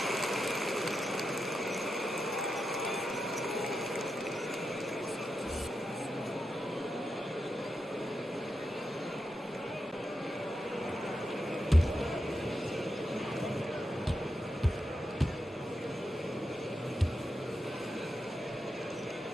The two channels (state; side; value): normal; both; correlation 0.88